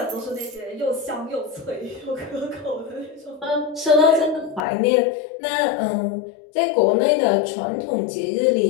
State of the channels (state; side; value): drops out; right; at 4.7 s